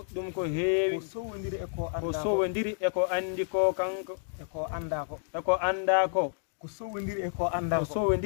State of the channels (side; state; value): right; silent; digital silence